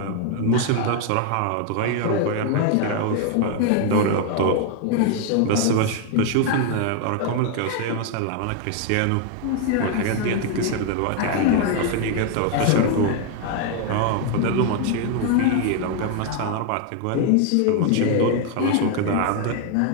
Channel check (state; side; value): different; both; correlation 0.00